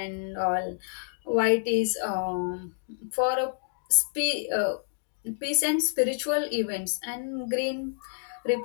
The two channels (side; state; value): right; silent; digital silence